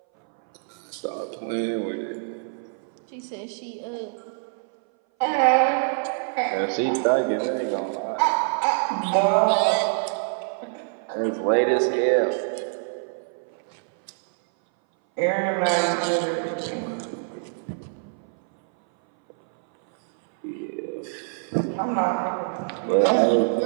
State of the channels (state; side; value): silent; left; 59 dB below the other